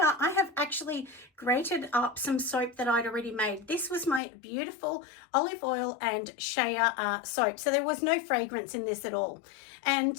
I have actually grated up some soap that I'd already made. This was my beautiful olive oil and shea soap, so there was no fragrance in this at all. And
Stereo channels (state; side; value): drops out; right; at 4.2 s